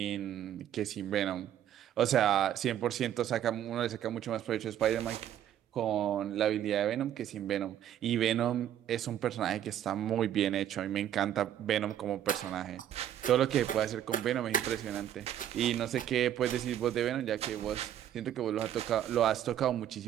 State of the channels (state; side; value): quieter; left; 10.9 dB